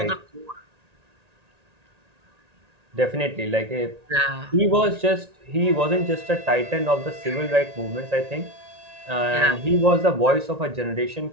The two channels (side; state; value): left; late; 1.8 ms